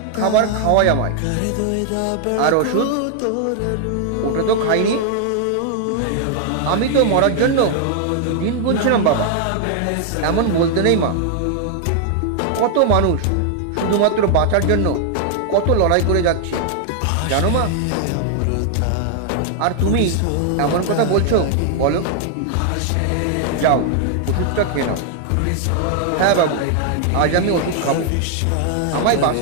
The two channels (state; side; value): different; both; correlation 0.00